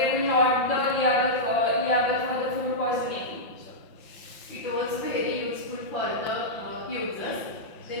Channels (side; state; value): right; late; 5.8 ms